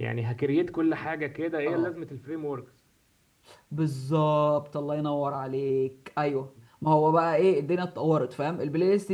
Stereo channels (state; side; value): identical; both; correlation 1.00